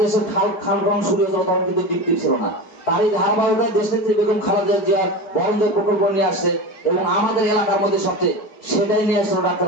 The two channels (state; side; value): late; right; 4.7 ms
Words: খাল খনন শুরু হয়েছিল তখন কিন্তু বিক্রি ছিল না। তারই ধারাবাহিকতায় দেশনেত্রী বেগম খালেদা জিয়ার বরঞ্জোর প্রকল্প নিয়ে আসছে এবং আমাদের এলাকার মধ্যে সবচেয়ে সেটাই নিয়ে আসছিল ডাক্তার